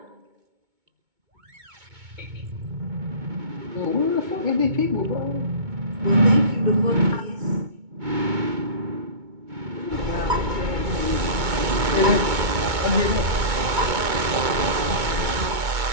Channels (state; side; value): late; left; 2.2 ms